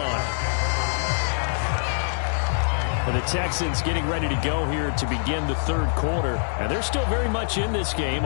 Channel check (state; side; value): silent; right; 62 dB below the other